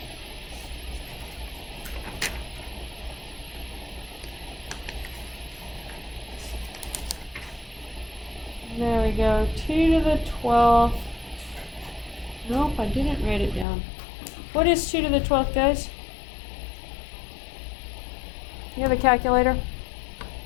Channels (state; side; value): drops out; right; at 13.7 s